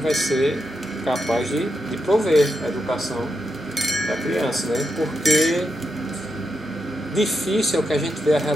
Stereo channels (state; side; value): normal; both; correlation 0.85